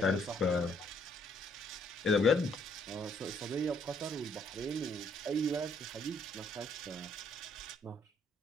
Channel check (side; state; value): both; normal; correlation 0.67